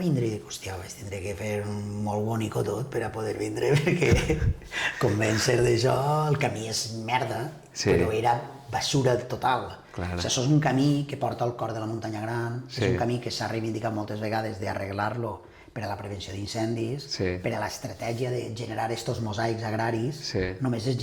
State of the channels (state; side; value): identical; both; correlation 1.00